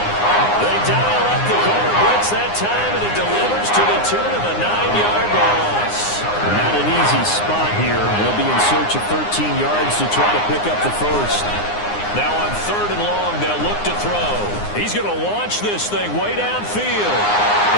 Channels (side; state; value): right; late; 9.7 ms